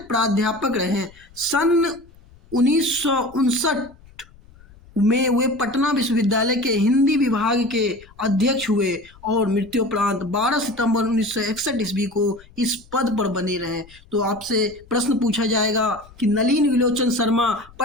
रहे। सन 1959 में वे पटना विश्वविद्यालय के हिंदी विभाग के अध्यक्ष हुए और मृत्युपरांत 12 सितंबर 1961 ईस्वी को इस पद पर बने रहे। तो आपसे प्रश्न पूछा जाएगा कि नलिन बिलोचन शर्मा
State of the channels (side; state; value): left; noise; rumble, 25 dB below the sound